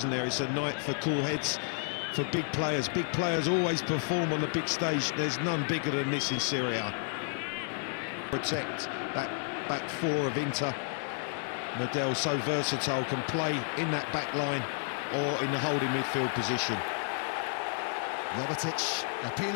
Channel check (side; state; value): right; silent; 56 dB below the other